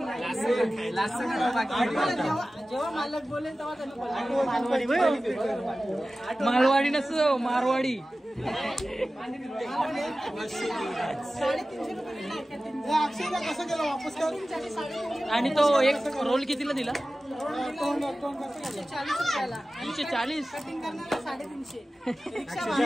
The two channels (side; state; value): both; normal; correlation 0.96